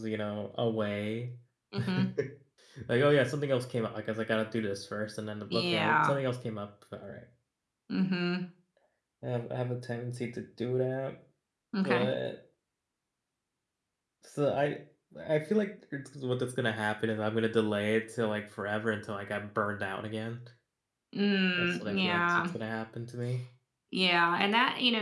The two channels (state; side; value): identical; both; correlation 1.00